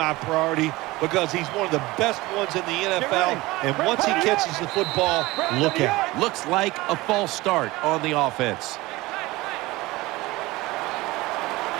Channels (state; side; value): quieter; left; 20.3 dB